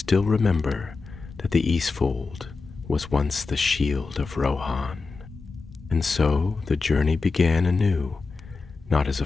remember that the Eastfold was once the shield of Rohan." And so the journey began anew, not as a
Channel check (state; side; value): quieter; right; 4.2 dB